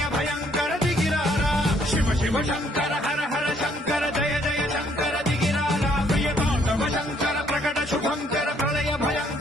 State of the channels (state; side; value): normal; both; correlation 0.66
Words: భయంకర దిగిరారా శివ శివ శంకర హర హర శంకర జయ జయ శంకర దిగిరారా ప్రియతాండవ శంకర ప్రకట శుభంకర ప్రళయ